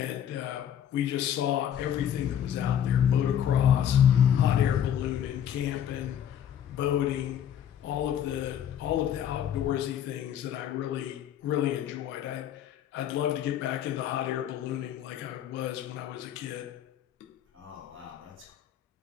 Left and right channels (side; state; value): right; quieter; 9.8 dB